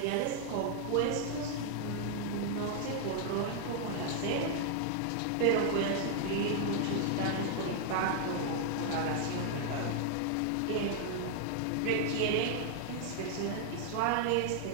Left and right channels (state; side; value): different; both; correlation 0.00